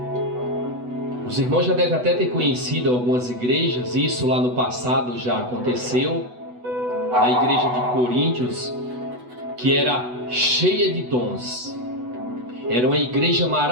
Os irmãos já devem até ter conhecido algumas igrejas, isso lá no passado já aconteceu, na igreja de Coríntios, que era cheia de dons. Era uma igreja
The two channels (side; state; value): left; late; 8.1 ms